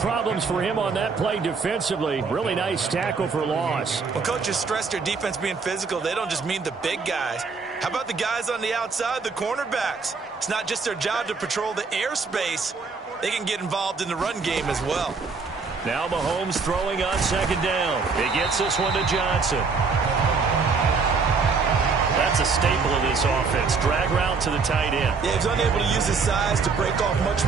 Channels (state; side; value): quieter; left; 4.8 dB